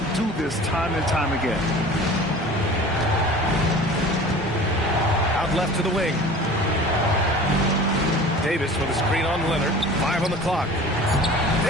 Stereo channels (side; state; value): both; normal; correlation 0.41